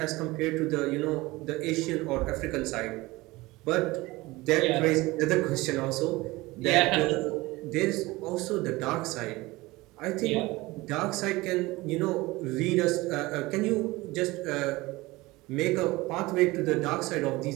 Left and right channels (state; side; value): quieter; left; 20.8 dB